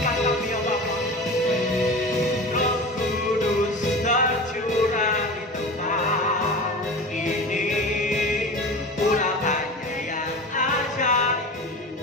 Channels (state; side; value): normal; both; correlation 0.32